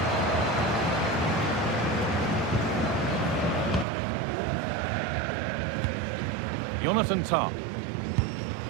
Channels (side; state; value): left; drops out; at 3.9 s